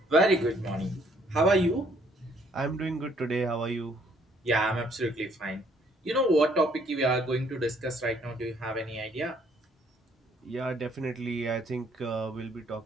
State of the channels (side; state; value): both; normal; correlation 0.65